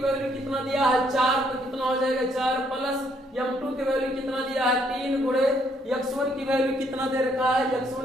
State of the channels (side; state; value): both; normal; correlation 0.70